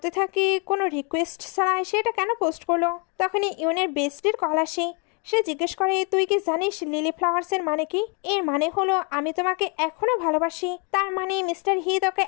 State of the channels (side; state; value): right; quieter; 36.0 dB